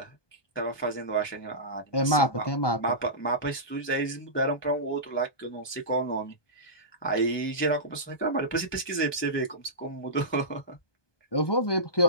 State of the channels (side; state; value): right; late; 1.2 ms